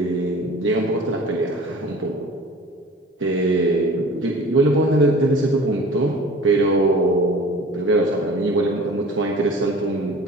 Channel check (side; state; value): both; normal; correlation 0.43